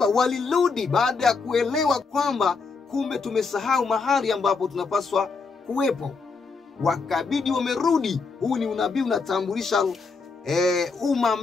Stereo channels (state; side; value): quieter; right; 4.5 dB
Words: walirudi baada ya kuelewa kwamba kumbe tumesahau mahali ambapo tunapaswa kuwepo. Wakabidi wamerudi. Huu ni unabii unatambulisha umma